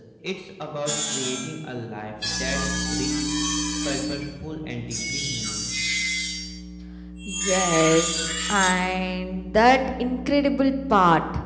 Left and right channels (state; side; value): identical; both; correlation 1.00